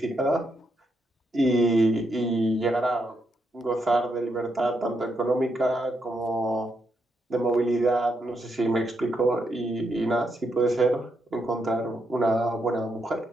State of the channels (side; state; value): both; normal; correlation 0.80